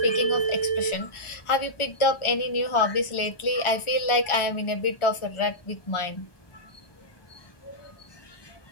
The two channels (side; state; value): right; late; 1.4 ms